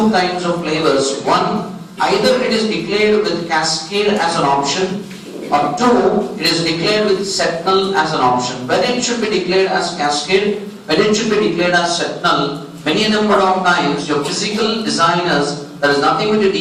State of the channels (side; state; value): both; identical; correlation 1.00